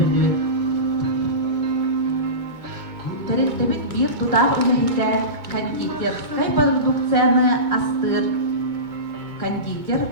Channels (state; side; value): late; left; 2.2 ms